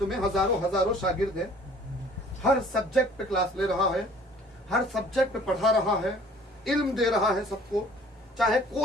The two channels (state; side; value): normal; both; correlation 0.52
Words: में हजारों हजारों शागिर्द हैं, हर सब्जेक्ट पे क्लास ले रहा है, हर सब्जेक्ट पे पढ़ा रहा है, इल्म दे रहा है सबको, चाहे